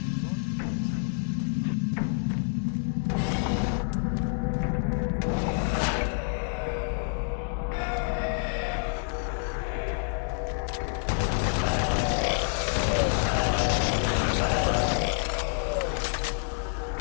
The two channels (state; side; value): silent; right; 59 dB below the other